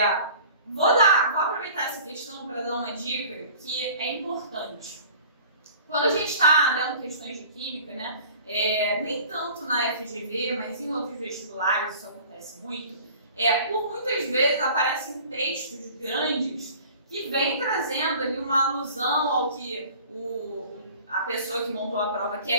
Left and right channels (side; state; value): both; inverted; correlation -0.46